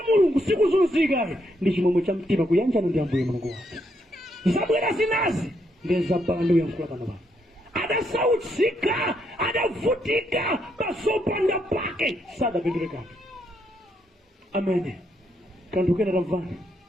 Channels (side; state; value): both; normal; correlation 0.76